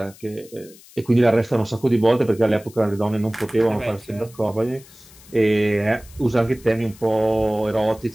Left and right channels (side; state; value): left; noise; hiss, 23 dB below the sound